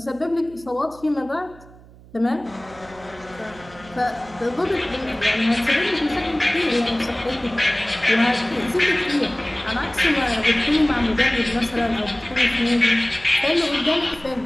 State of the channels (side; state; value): right; noise; hum, 22 dB below the sound